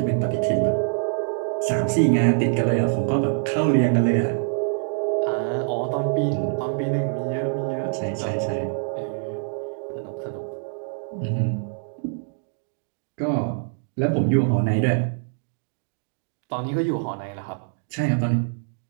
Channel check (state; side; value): silent; left; digital silence